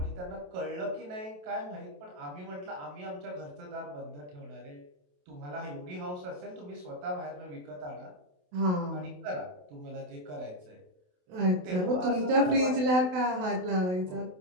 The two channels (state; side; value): late; left; 28 ms